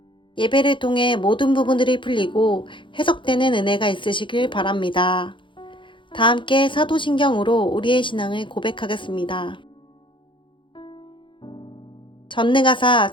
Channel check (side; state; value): right; late; 0.24 ms